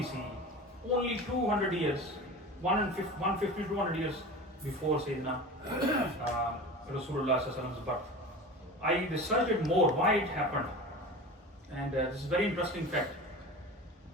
CE. Only 200 years, 150, 200 years before Sayyidina Rasulullah's birth. I researched it more, why it happened. And this is a very interesting fact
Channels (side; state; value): both; normal; correlation 0.33